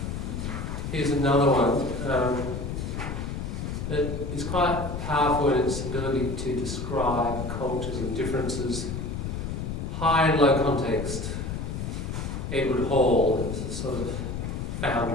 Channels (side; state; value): left; noise; rumble, 4 dB below the sound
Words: Here's another one that is quite powerful in its ability to describe cultures and differences. High and low context. Edward Hall is the sort of